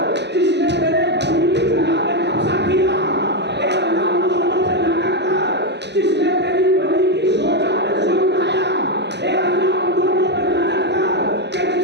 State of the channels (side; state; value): left; late; 0.50 ms